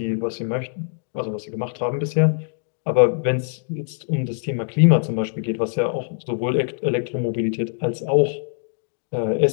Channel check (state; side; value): silent; right; digital silence